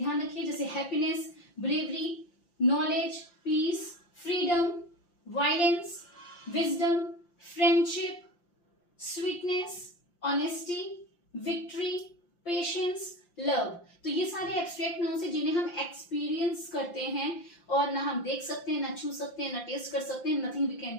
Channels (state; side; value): late; right; 5.7 ms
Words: रखिए। जैसे happiness, bravery, knowledge, peace, freedom, violence, wisdom, friendship, sweetness, honesty, victory, patience, love. तो ये सारे एब्स्ट्रैक्ट नाउन्स हैं जिन्हें हम एक्सपीरियंस करते हैं, और ना हम देख सकते हैं, ना छू सकते हैं, ना टेस्ट कर सकते हैं, nothing we